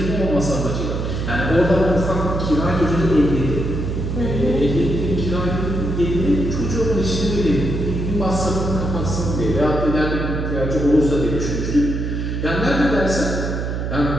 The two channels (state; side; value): noise; right; hum, 2 dB below the sound